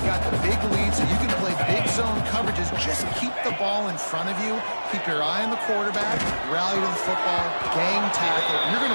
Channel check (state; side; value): inverted; both; correlation -1.00